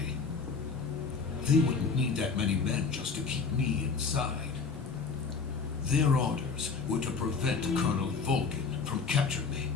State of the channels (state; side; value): quieter; right; 5.1 dB